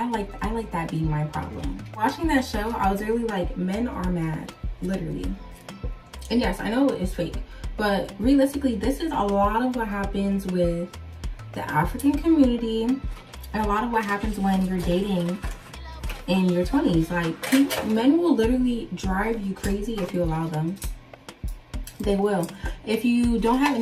like that being my problem. Watching that show, I was really like, men are mad, literally. And yes, I know it's fake, but realistically, this is a lot of what happens with the African community, and a lot of what happens when you're dating in your 20s. Like, men will literally drive you crazy if you allow them. They will. If you don't have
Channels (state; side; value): identical; both; correlation 1.00